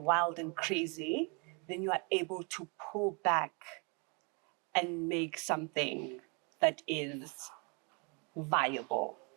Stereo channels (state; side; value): quieter; left; 32.9 dB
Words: and crazy, then you are able to pull back and make something that is viable.